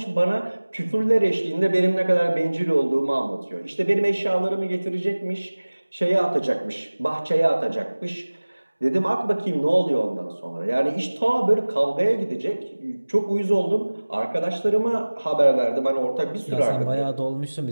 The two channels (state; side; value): inverted; both; correlation -1.00